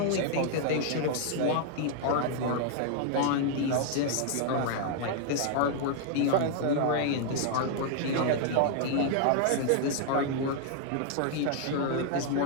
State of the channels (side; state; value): both; different; correlation 0.00